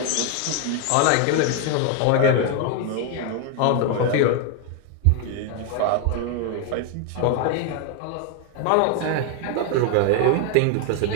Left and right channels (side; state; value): both; different; correlation 0.01